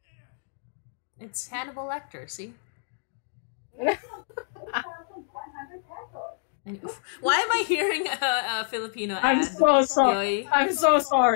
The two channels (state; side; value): silent; right; digital silence